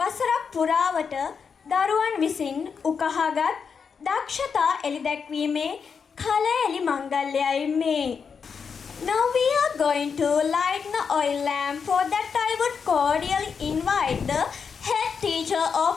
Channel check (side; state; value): right; quieter; 6.1 dB